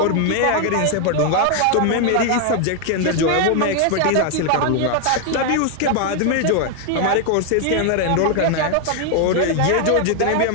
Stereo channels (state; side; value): different; both; correlation 0.00